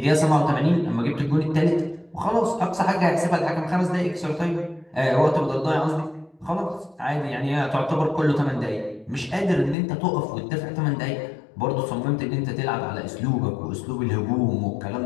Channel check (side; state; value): right; drops out; at 9.8 s